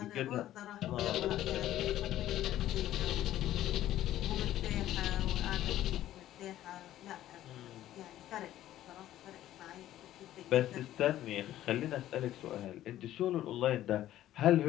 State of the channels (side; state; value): right; quieter; 13.3 dB